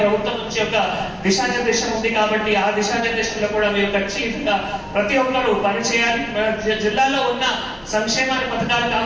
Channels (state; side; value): identical; both; correlation 1.00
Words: నుంచి ఒక దిశానిర్దేశం ఉంది కాబట్టి ఆ దిశానిర్దేశంలో కూడా మీరు ఖచ్చితంగా ప్రతి ఒక్కరూ పనిచేయాలి. మన జిల్లాలో ఉన్న సంక్షేమాన్ని పథకాలు